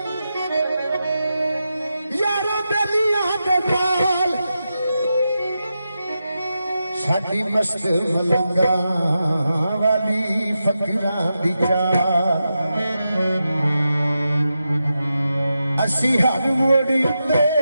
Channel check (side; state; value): both; inverted; correlation -0.89